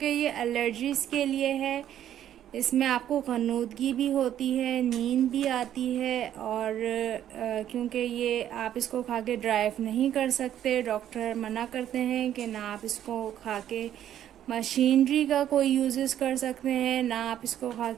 ये एलर्जीज़ के लिए है। इसमें आपको ग़नूदगी भी होती है, नींद भी आती है, और क्योंकि ये आप इसको खा के ड्राइव नहीं कर सकते, डॉक्टर मना करते हैं कि ना आप इसको खा के मशीनरी का कोई यूजेस कर सकते हैं, ना आप इसको खा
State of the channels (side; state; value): left; quieter; 10.9 dB